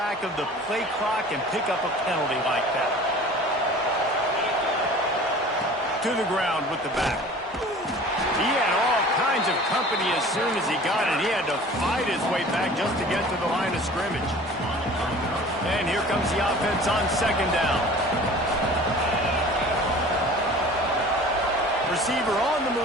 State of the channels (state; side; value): normal; both; correlation 0.44